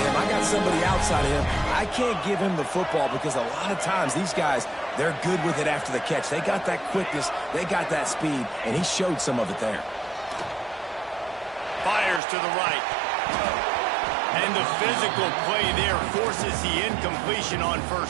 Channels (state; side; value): drops out; left; at 12.2 s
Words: him. I got somebody outside of him. I can't give him the football because a lot of times these guys, they're good with it after the catch. They got that quickness. They got that speed, and he showed some of it there. Fires to the right. And the physical play there forces the incompletion on